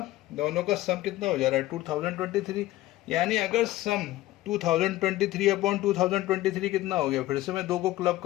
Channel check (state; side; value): quieter; right; 16.2 dB